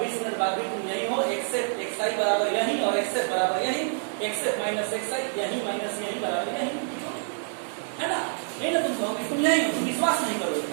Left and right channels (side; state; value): left; silent; digital silence